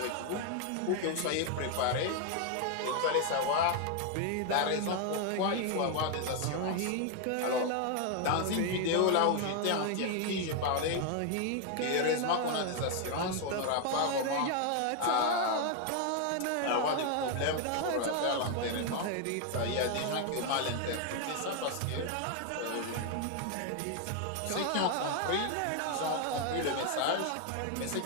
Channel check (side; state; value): both; different; correlation 0.01